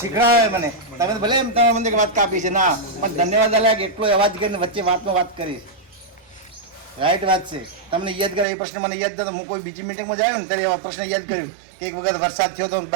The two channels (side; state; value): left; drops out; at 8.5 s